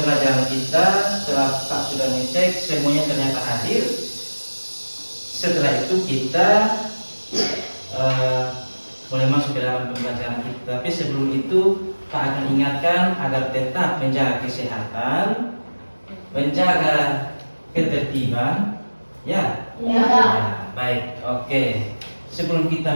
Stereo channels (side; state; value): both; inverted; correlation -1.00